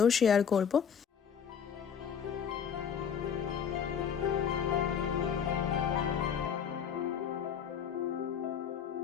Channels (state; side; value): quieter; right; 7.7 dB